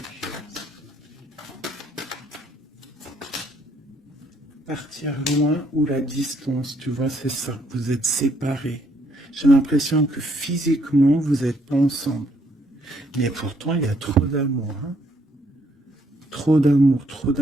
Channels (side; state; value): both; normal; correlation 0.69